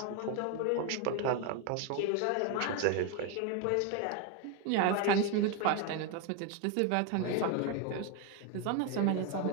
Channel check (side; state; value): both; different; correlation 0.01